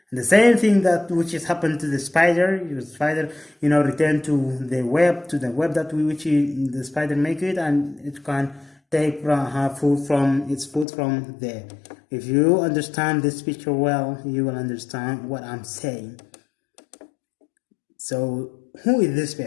And the same thing that which has happened to the spider. The spider return to the web that the spider make it, and it can take her food from there. If you understand this picture well, you will understand what I'm saying. So who is this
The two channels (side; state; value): right; drops out; at 10.9 s